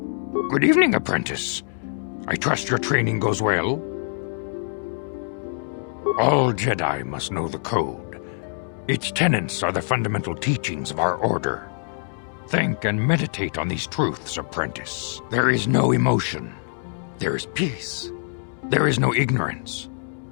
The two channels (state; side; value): silent; right; digital silence